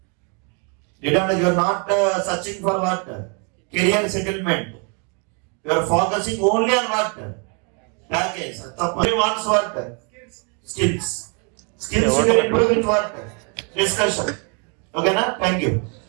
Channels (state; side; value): quieter; left; 36.5 dB